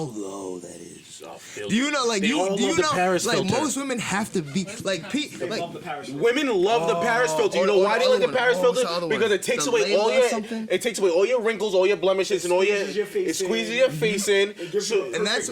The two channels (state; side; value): identical; both; correlation 1.00